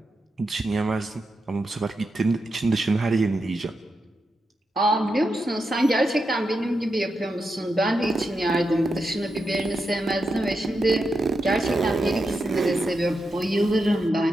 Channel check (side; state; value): both; normal; correlation 0.87